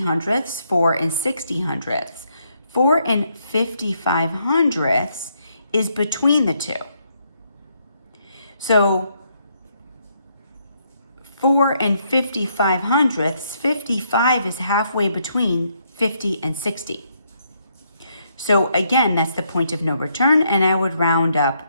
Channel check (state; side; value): inverted; both; correlation -0.74